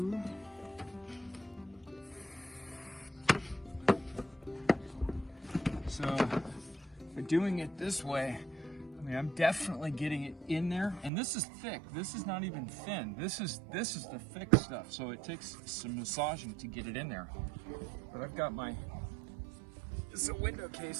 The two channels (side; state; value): left; drops out; at 11.1 s